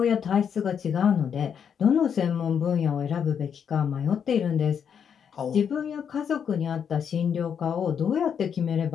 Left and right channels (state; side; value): quieter; right; 7.6 dB